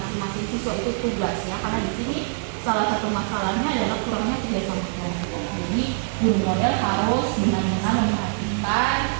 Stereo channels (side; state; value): left; silent; digital silence